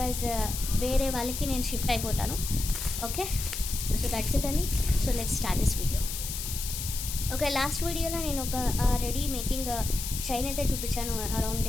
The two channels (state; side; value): noise; left; hiss, 5 dB below the sound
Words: వేరే వాళ్ళకి నేను షిఫ్ట్ అయిపోతాను. ఓకే, సో దట్స్ ఇట్ అని. So let's start this video. Okay, last వీడియోలో నేను ఒక రెడీ మేకింగ్ చైన్ అయితే చూపించాను. అరౌండ్